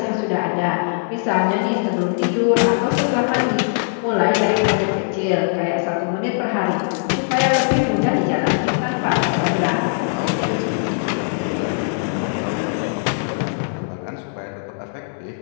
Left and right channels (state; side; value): silent; right; digital silence